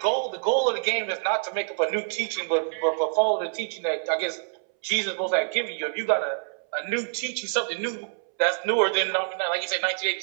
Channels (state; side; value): silent; left; 61 dB below the other